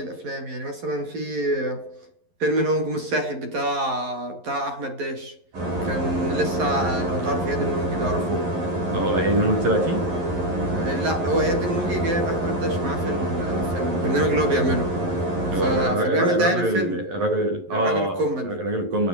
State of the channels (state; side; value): late; left; 11 ms